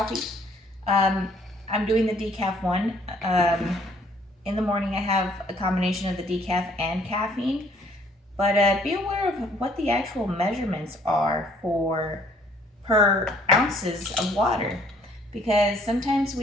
I'm doing the decaf one. In the morning I have a combination of the decaf and caffeine. But be aware of what the actual measurements are for per ounces of water, because sometimes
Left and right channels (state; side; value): normal; both; correlation 0.60